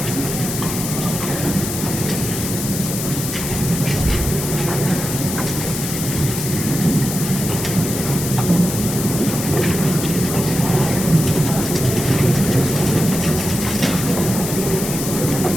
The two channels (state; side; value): noise; left; hiss, 5 dB below the sound